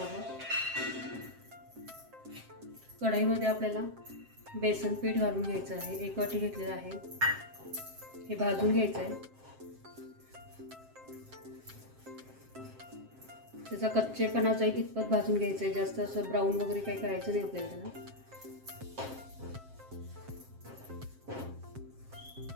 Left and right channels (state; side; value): late; left; 7.6 ms